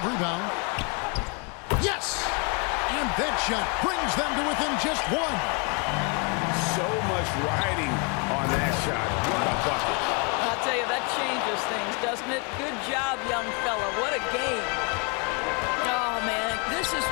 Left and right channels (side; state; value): right; quieter; 34.8 dB